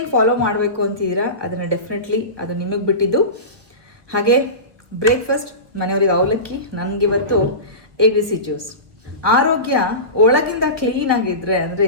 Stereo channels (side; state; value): left; late; 1.3 ms